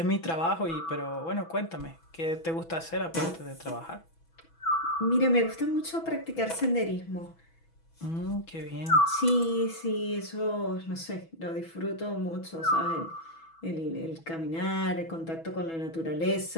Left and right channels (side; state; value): right; late; 6.1 ms